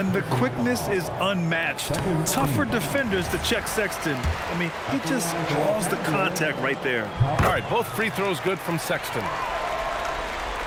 the quickness is unmatched. Tougher defenders to check Sexton. I mean, he just draws the contact right there. All right, both free throws good from Sexton.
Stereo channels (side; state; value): both; identical; correlation 1.00